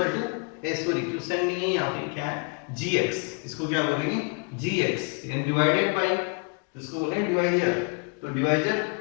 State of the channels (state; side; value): quieter; right; 35.3 dB